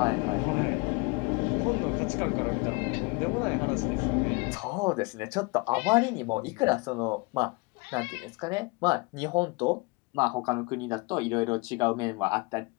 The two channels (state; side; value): quieter; right; 27.9 dB